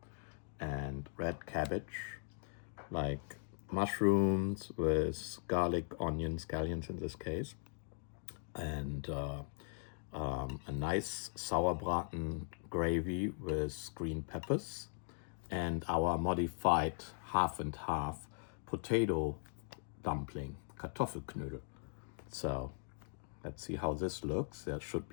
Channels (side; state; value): right; silent; digital silence